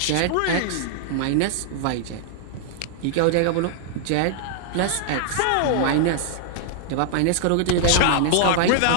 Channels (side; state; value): both; different; correlation -0.01